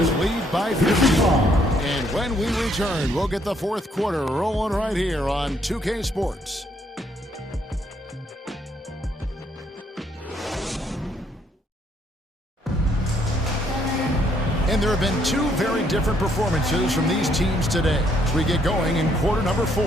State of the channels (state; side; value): normal; both; correlation 0.69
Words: lead by 15. And when we return, we'll get the fourth quarter rolling right here on 2K Sports. And there have been 2 very different performances from these teams today as we get going in quarter number 4.